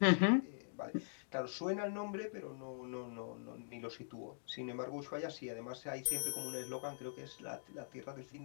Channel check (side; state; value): right; silent; digital silence